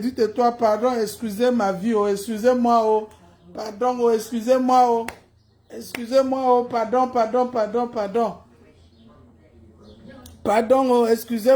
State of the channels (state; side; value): identical; both; correlation 1.00